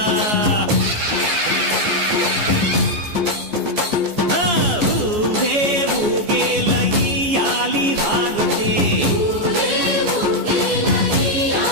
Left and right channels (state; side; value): late; left; 14 ms